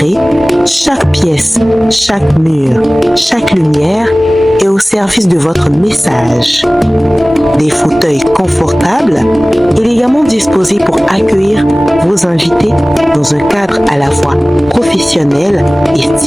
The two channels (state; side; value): normal; both; correlation 0.98